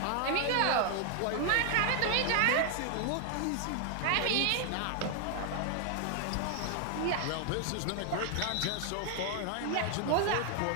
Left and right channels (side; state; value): both; different; correlation 0.00